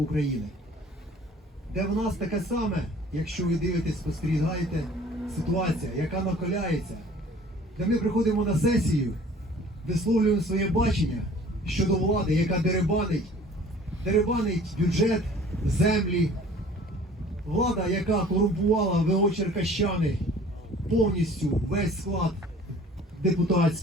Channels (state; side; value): normal; both; correlation 0.50